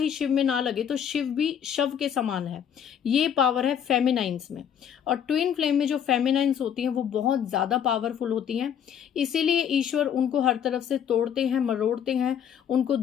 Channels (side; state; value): right; quieter; 8.7 dB